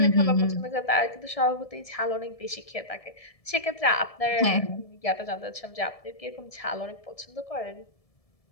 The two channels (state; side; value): late; right; 1.7 ms